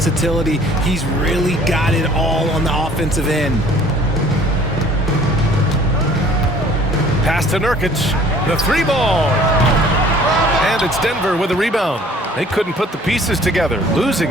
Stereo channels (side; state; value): both; normal; correlation 0.53